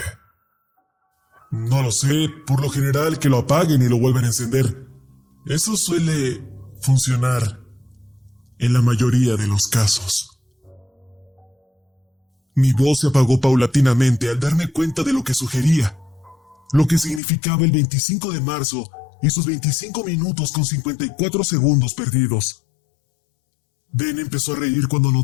No lo sé, por lo general que lo apaguen y lo vuelvan a encender. Eso suele funcionar en la mayoría de los casos. Mi voz se apagó paulatinamente al darme cuenta de lo que sugería, lo que significaba el 25 de marzo y sus 25 minutos con 54 segundos perdidos. Ben empezó a reír cuando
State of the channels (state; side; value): drops out; right; at 17.2 s